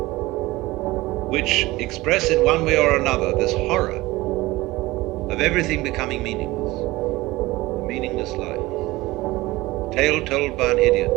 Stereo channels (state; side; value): quieter; left; 19.6 dB